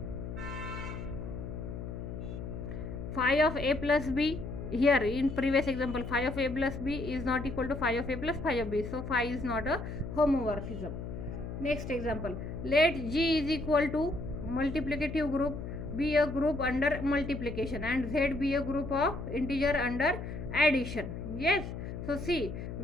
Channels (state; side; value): noise; left; hum, 7 dB below the sound